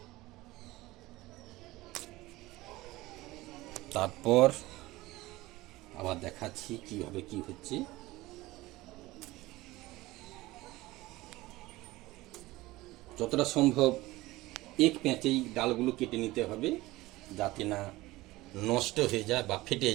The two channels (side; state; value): left; quieter; 18.9 dB